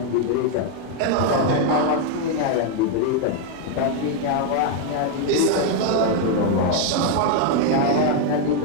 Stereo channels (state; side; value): different; both; correlation 0.01